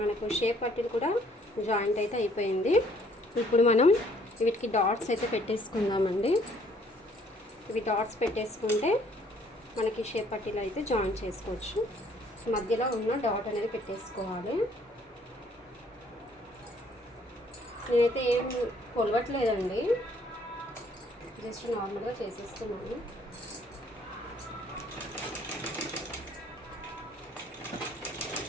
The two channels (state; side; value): normal; both; correlation 0.62